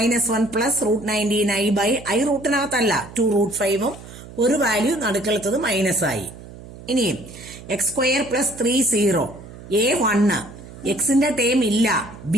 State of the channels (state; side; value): noise; right; hum, 16 dB below the sound